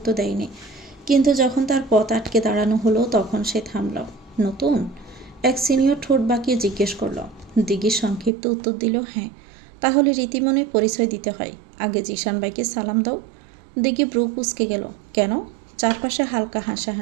দেয়নি, কিন্তু যখন তার পথ আটকে দাঁড়ানো হলো তখন সে থামল। নতুন? এক সিনিয়র ঠোঁট বাঁকিয়ে জিজ্ঞেস করলো। দিঘি সংক্ষিপ্ত উত্তর দিল, হ্যাঁ। তাহলে রীতিমনে পরিচয় দিতে হয়। আগে জিশান ভাইকে সালাম দাও। দিঘি ব্রু কুঁচকে গেল। কেন? চারপাশে হালকা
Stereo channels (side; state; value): left; drops out; at 8.3 s